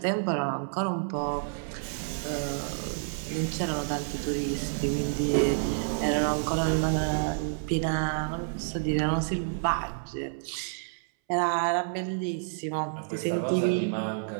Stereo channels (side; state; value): left; silent; 58 dB below the other